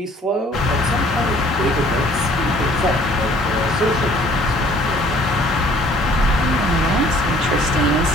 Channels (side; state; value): both; normal; correlation 0.57